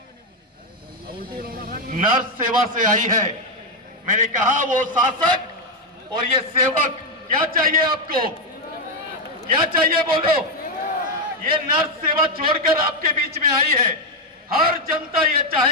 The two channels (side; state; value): both; normal; correlation 0.04